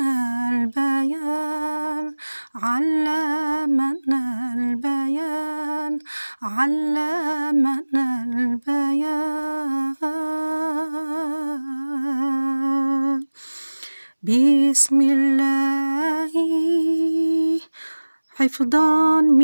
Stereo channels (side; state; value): both; inverted; correlation -1.00